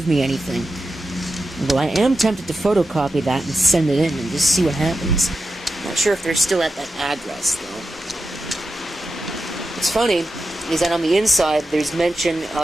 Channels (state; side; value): normal; both; correlation 0.90